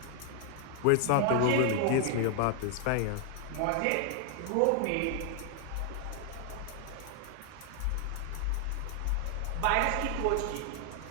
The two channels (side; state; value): both; different; correlation 0.00